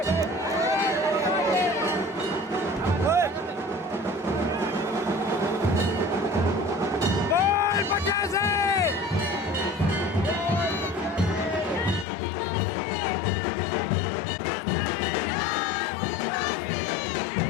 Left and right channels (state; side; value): drops out; right; at 12.1 s